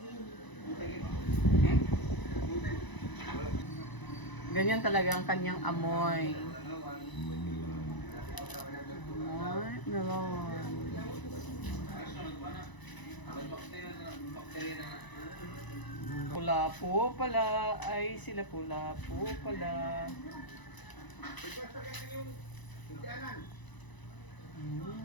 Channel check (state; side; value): late; right; 1.0 ms